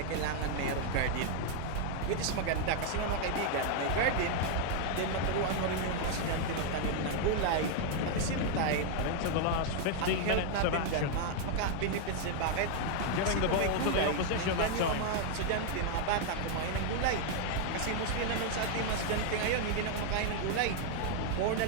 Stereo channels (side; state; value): both; different; correlation 0.00